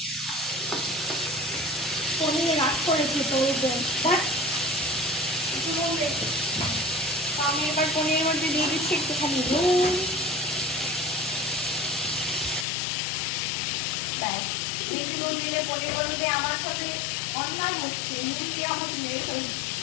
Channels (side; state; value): right; drops out; at 12.7 s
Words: পনির রাগ করেছে তোর বোন। আমি এবার পনিরের মধ্যে দিয়ে দিচ্ছি একটুখানি নুন। ব্যাস, বেশি নুন দিলে পনিরের মধ্যে আমার সাথে অন্যায় হচ্ছে, মুরগি আমার মেরে ফেলছে।